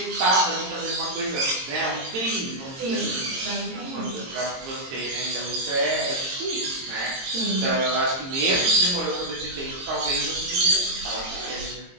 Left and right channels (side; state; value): left; late; 22 ms